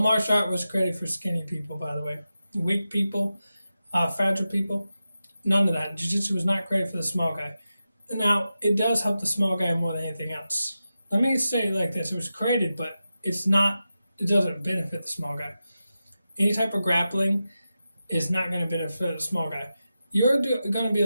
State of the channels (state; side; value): inverted; both; correlation -0.91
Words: art was created for skinny people, by the way. Weak people, fragile people, none of that. Jiu-jitsu was not created for the small guy. Now, it does help the small guy more than anything else. Let me say it like this. It was created, but it doesn't benefit the small guy. Any type of grappling is not going to benefit the small guy. You're going to be